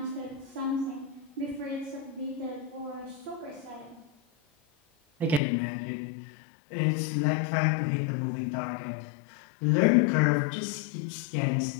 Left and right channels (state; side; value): drops out; right; at 5.4 s